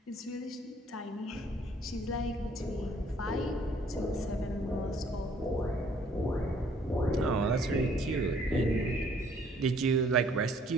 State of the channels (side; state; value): both; normal; correlation 0.61